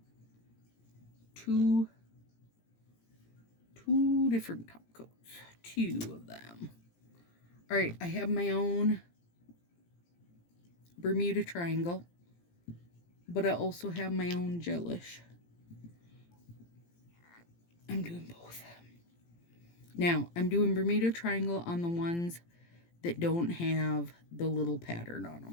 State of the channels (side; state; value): right; late; 17 ms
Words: two different top coats, 2 of them. All right, I have my own Bermuda Triangle, but I also have my own gelish. I'm doing both. Now, I'm doing Bermuda Triangle on the ones that don't have the little pattern on